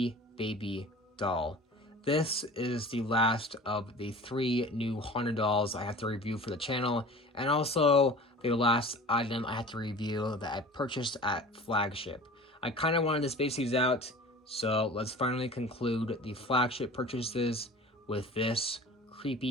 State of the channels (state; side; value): normal; both; correlation 0.40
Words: Baby Doll. This is the last of the 3 new haunted dolls I have to review for the channel, and also the last item I have to review that I purchased at Flagship. I kind of wanted to space these out, so let's finally conclude the Flagship purchases with this